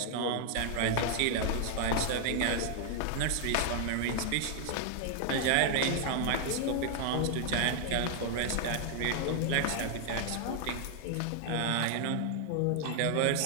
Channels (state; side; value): different; both; correlation 0.00